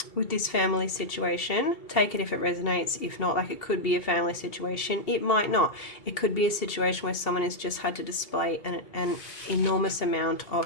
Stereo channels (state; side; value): late; right; 2.7 ms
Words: with this family situation, take it if it resonates. If not, like, it could be a family situation, it might not. It could be a situation where someone has just had to display an enormous amount of